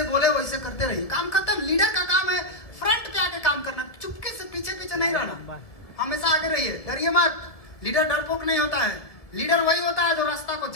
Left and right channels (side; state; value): right; late; 1.6 ms